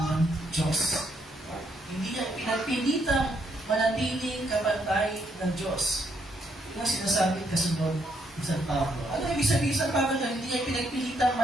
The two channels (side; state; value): both; normal; correlation 0.74